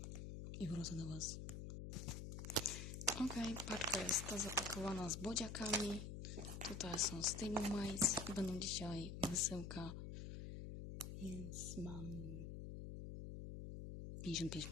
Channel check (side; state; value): left; noise; hum, 7 dB below the sound